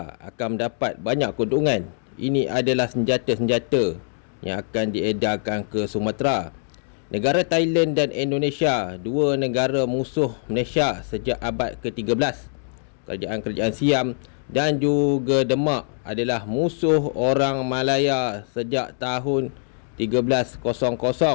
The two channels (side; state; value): right; silent; digital silence